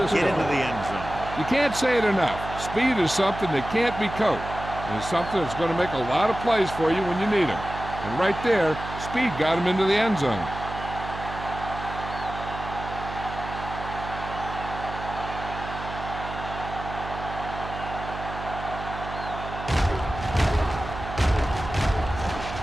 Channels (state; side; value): noise; right; hum, 9 dB below the sound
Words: into the end zone. You can't say it enough. Speed is something that can't be coached. And it's something that's going to make a lot of plays for you when you need them. And right there, speed got him into the end zone.